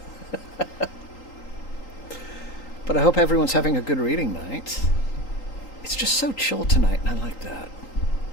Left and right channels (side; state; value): right; late; 3.8 ms